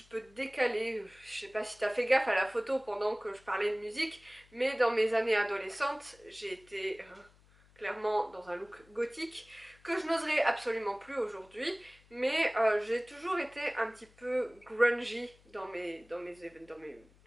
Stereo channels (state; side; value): noise; left; hum, 28 dB below the sound